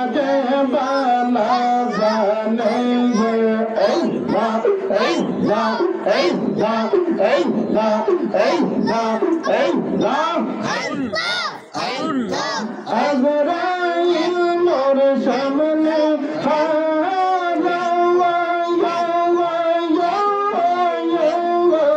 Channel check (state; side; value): identical; both; correlation 1.00